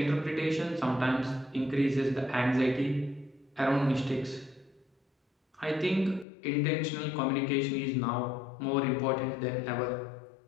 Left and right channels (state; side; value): drops out; right; at 6.2 s